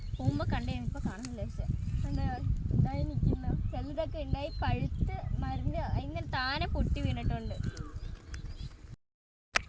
പോകുമ്പോൾ കണ്ടേ, ഇപ്പോൾ കാണുന്നില്ല. പക്ഷേ എന്താ ഉണ്ടായി നിൽക്കുന്നു. ചിലതൊക്കെ ഉണ്ടായി പഴുത്ത് മരുന്ന് ഇങ്ങനെ താനെ പൊട്ടി വീണിട്ടുണ്ട്.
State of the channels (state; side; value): identical; both; correlation 1.00